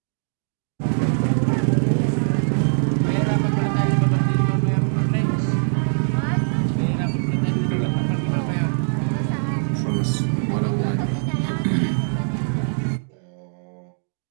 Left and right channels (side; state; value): left; silent; digital silence